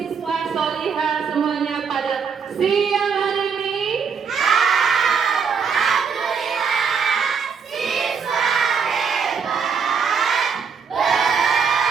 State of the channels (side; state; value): left; quieter; 6.1 dB